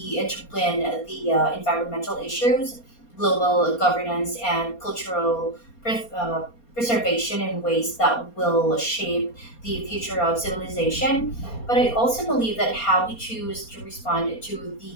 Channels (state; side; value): late; right; 4.3 ms